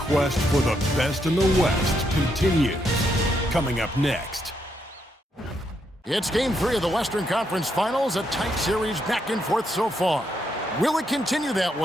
for the best in the West continues. Coming up next. It's Game 3 of the Western Conference Finals, a tight series back and forth so far. Will it continue that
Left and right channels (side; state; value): both; normal; correlation 0.78